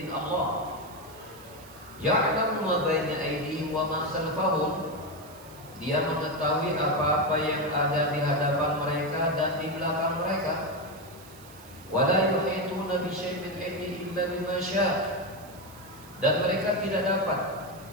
Allah. Ya'lamu ma baina aydihim wa ma khalfahum. Dia mengetahui apa-apa yang ada di hadapan mereka dan di belakang mereka. Wa la yuhituna bi syai'in min ilmihi illa bima syaa'. Dan mereka tidak dapat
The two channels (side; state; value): right; noise; hiss, 21 dB below the sound